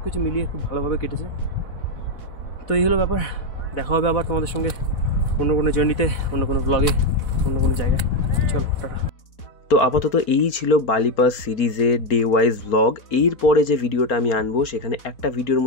কিছু মিলিয়ে খুব ভালোভাবে কেটেছে। তো এই হলো ব্যাপার। দেখা হবে আবার তোমাদের সঙ্গে অন্য কোনো জার্নিতে, অন্য কোনো ব্লগে, অন্য কোনো জায়গায়। চলো টাটা। তো আপাতত এই ছিল বালি পাস সিরিজের ডে ওয়াইজ ব্লগ। এরপরে যে ভিডিওটা আমি আনবো সেখানে একটা ভিডিওর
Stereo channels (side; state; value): right; late; 4.4 ms